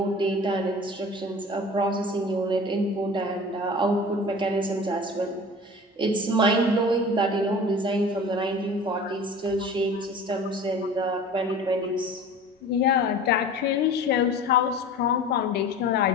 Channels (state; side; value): normal; both; correlation 0.39